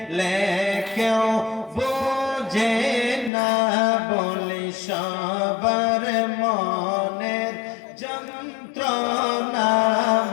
কেউ বোঝে না বলে সবার মনের যন্ত্রণা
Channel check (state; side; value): drops out; right; at 3.3 s